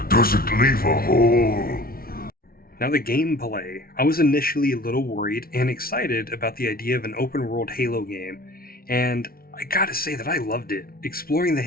Does it leave a hole? Now the gameplay. I was initially a little worried and excited about the idea of an open-world Halo game, and I gotta say that I loved it. Exploring the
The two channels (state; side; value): late; right; 0.43 ms